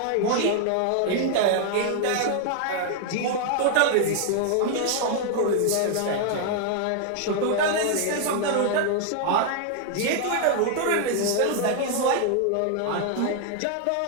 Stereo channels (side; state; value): both; different; correlation 0.00